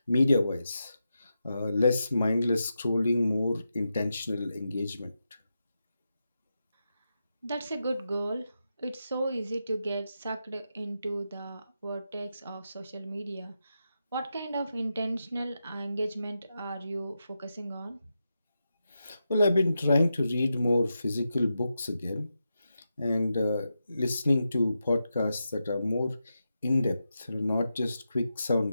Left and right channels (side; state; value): both; inverted; correlation -0.88